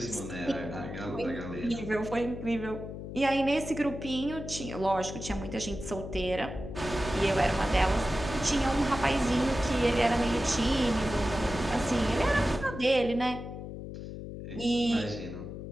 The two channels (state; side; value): noise; left; hum, 9 dB below the sound